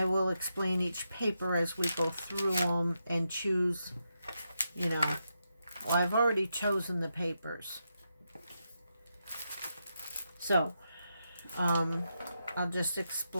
will explain each paper as we go through them and choose, well, I've already chosen the papers. So, I'll just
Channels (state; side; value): inverted; both; correlation -0.84